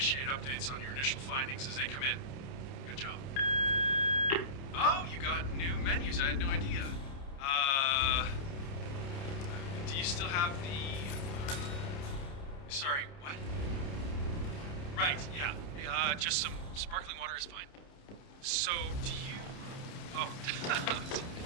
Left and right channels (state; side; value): late; right; 30 ms